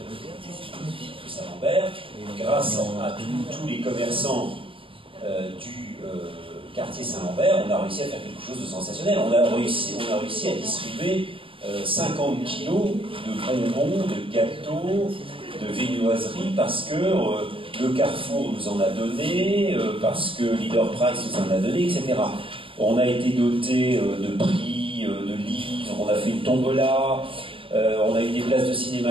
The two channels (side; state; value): left; late; 0.25 ms